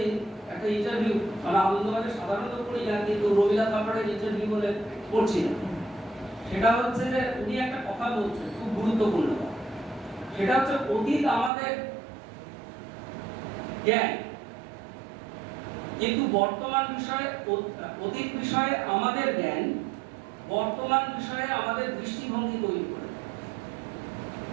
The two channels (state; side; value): drops out; left; at 11.5 s